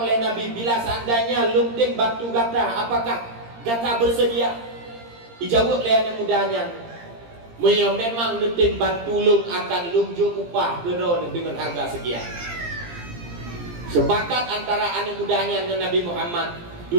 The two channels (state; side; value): late; left; 17 ms